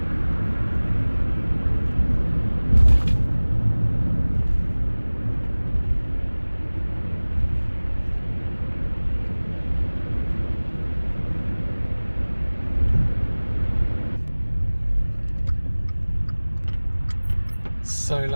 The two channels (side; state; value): both; inverted; correlation -1.00